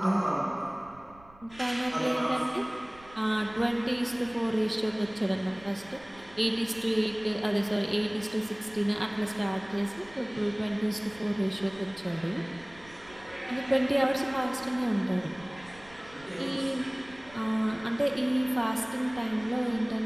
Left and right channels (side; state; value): right; noise; rumble, 24 dB below the sound